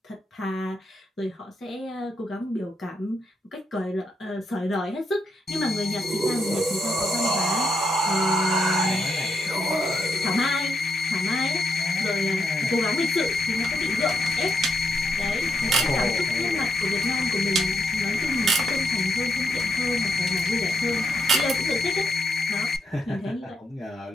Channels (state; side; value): normal; both; correlation 0.80